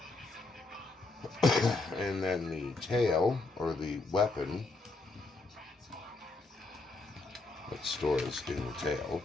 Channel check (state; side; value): quieter; right; 3.3 dB